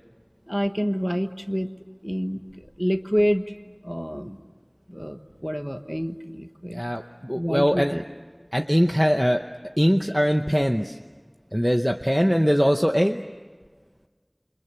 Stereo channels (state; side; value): identical; both; correlation 1.00